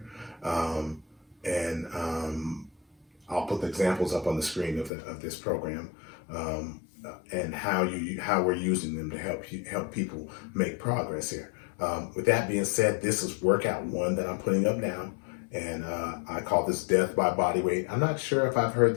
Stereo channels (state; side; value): drops out; right; at 4.9 s